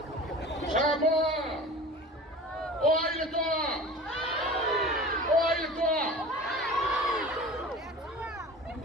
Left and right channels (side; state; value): both; normal; correlation 0.38